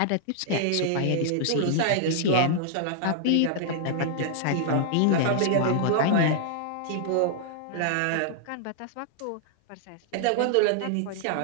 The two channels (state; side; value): different; both; correlation -0.01